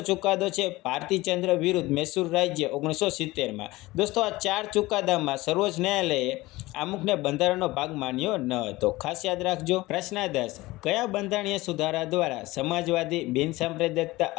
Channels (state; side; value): quieter; right; 19.7 dB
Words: છે ભારતીચંદ્ર વિરુદ્ધ મૈસૂર રાજ્ય 1970માં। દોસ્તો આ 4 ચુકાદામાં સર્વોચ્ચ ન્યાયાલયે આમુખને બંધારણનો ભાગ માન્યો ન હતો, ખાસ યાદ રાખજો। પ્રશ્ન 10, કયા બંધારણીય સુધારા દ્વારા સમાજવાદી, બિનસાંપ્રદાયિકતા,